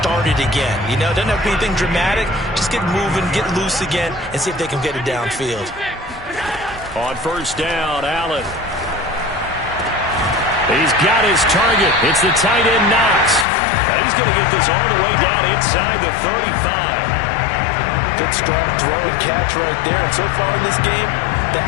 again. You know, doesn't have to be anything dramatic. Just get moving, get loose again, and see if they can get it downfield. On first down, Allen. He's got his target. It's the tight end, Knox. Now he's going to get this all the way down inside the 35. Good strong throw and catch right there. And so far in this game, the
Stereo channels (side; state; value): right; drops out; at 13.5 s